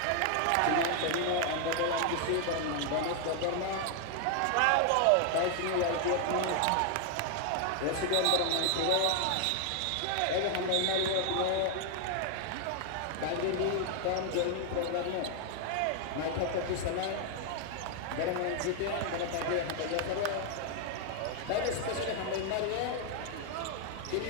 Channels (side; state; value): both; different; correlation 0.00